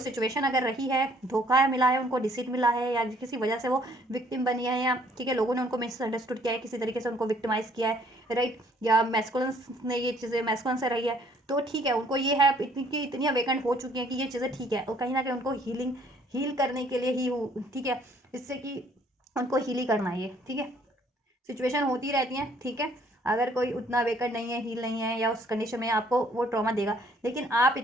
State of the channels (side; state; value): both; normal; correlation 0.62